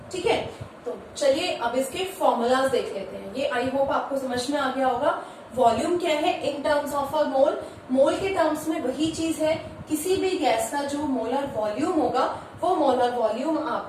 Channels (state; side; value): identical; both; correlation 1.00